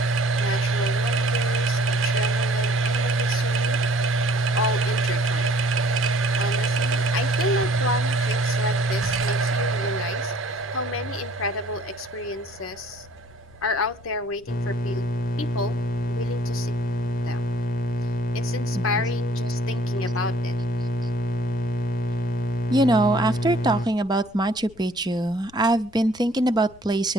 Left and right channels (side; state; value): left; noise; rumble, 25 dB below the sound